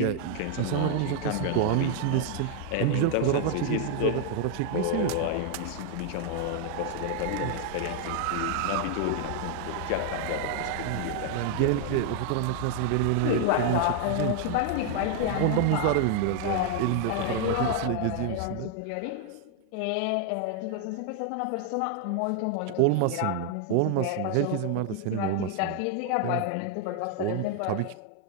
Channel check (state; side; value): different; both; correlation 0.00